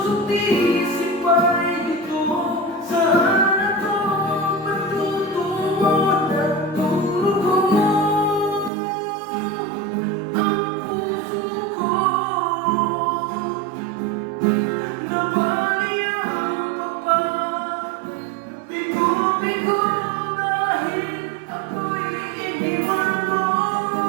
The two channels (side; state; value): left; drops out; at 8.7 s